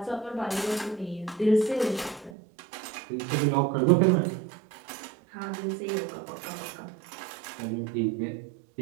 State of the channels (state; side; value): drops out; left; at 2.4 s